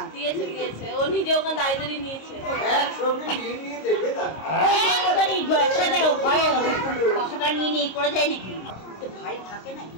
দিয়েছে দিয়েছে, ও নিজে ওখানে দাঁড়িয়ে নিয়েছে। একসঙ্গে নিয়ে নিয়ে দেবে তাকে। কথাটা নিয়ে নিয়ে করে যায় নাকি? ভাই থাকে নাকি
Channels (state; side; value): late; right; 26 ms